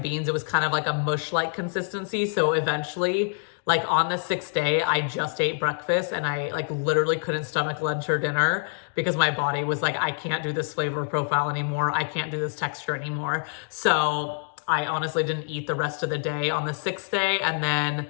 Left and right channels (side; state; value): right; silent; 61 dB below the other